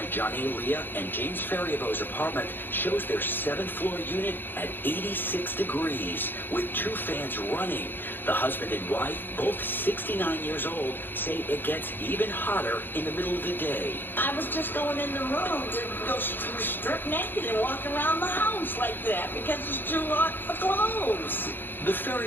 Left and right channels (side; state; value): right; late; 0.097 ms